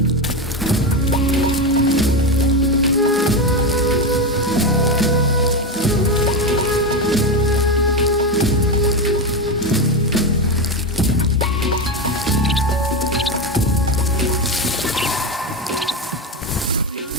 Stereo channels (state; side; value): normal; both; correlation 0.15